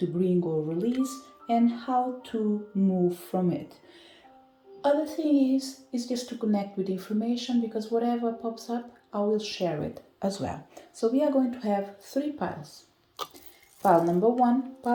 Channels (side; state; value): both; identical; correlation 1.00